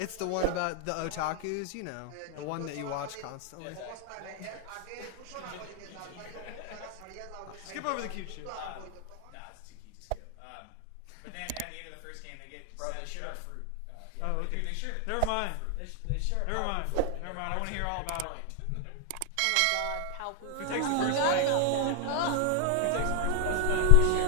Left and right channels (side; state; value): both; different; correlation 0.00